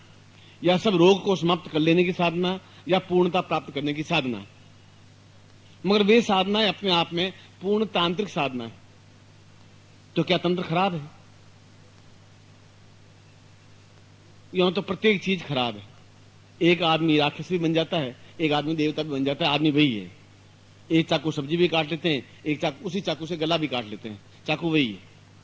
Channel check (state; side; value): identical; both; correlation 1.00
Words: या सब रोग को समाप्त कर लेने की साधना, या पूर्णता प्राप्त करने की साधना। मगर वे साधनाएं अपने आप में पूर्ण तांत्रिक साधना है। तो क्या तंत्र खराब है? यूं तो प्रत्येक चीज खराब है। एक आदमी राक्षस भी बन जाता है, एक आदमी देवता भी बन जाता है, आदमी वही है। एक चाकू सब्जी भी काट लेते हैं, एक चाकू, उसी चाकू से गला भी काट लेते हैं, चाकू वही है।